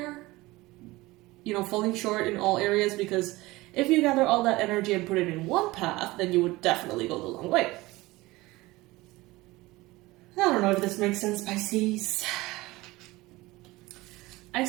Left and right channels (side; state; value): left; quieter; 20.2 dB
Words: You know, falling short in all areas, because if you gather all that energy and put it in one path, then you would definitely go the long way. I don't know if this makes sense, Pisces. I